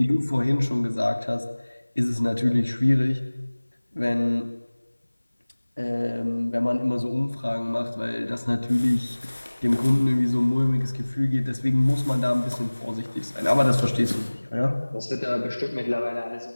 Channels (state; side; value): inverted; both; correlation -1.00